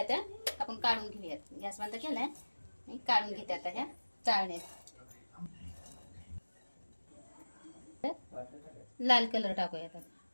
त्या आपण काढून घेऊयात. गॅस बंद केलाय, काढून घेते आता ह्या चाळणीत. लाल कलर टाकूया आता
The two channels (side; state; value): both; inverted; correlation -1.00